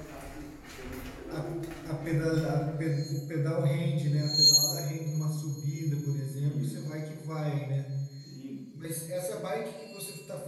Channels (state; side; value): identical; both; correlation 1.00